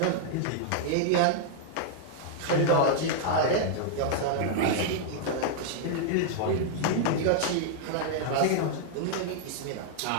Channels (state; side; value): different; both; correlation -0.01